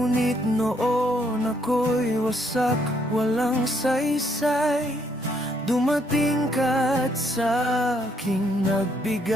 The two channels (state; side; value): normal; both; correlation 0.71